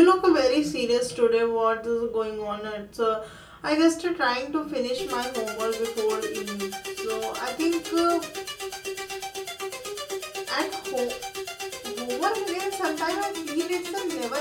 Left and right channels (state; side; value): identical; both; correlation 1.00